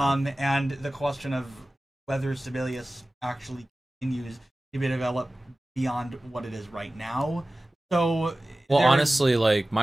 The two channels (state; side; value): normal; both; correlation 0.97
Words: And the question of whether Sibelius actually continues to be developed beyond what it is right now. So, well, honestly, like,